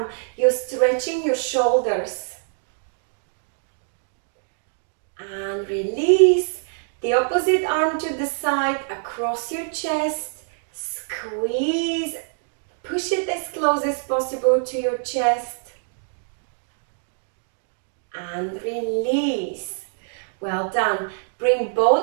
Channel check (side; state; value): left; silent; digital silence